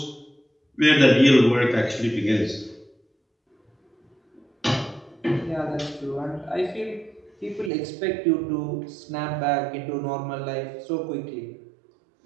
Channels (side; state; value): left; drops out; at 7.7 s